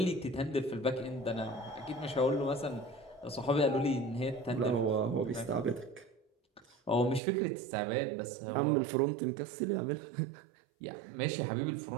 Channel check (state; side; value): drops out; left; at 7.2 s